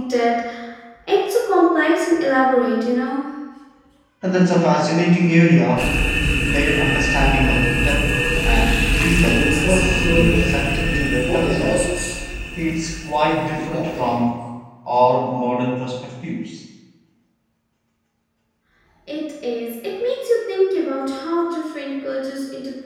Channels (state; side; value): identical; both; correlation 1.00